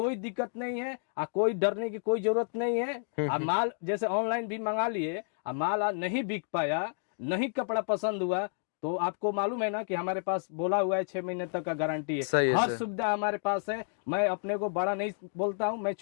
दिक्कत नहीं है, कोई डरने की कोई जरूरत नहीं है। आप माल जैसे ऑनलाइन भी मंगा लिए, माल नहीं बिक पाया, नहीं कपड़ा पसंद हुआ, तो आपको मालूम है ना कि हमारे पास बोला हुआ है 6 महीने तक का गारंटी है, हर सुविधा हमारे पास है। मैं अपने को बड़ा नहीं बोलता हूँ, मैं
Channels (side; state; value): right; silent; digital silence